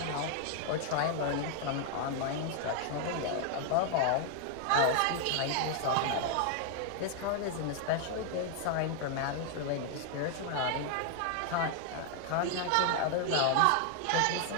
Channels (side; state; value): both; different; correlation 0.00